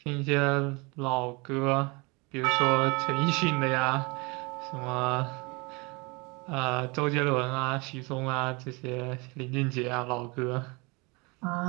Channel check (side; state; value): left; quieter; 27.8 dB